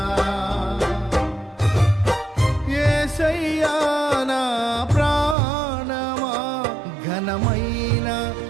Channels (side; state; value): left; drops out; at 5.4 s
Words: యేసయ్యా నా ప్రాణమా ఘనమైన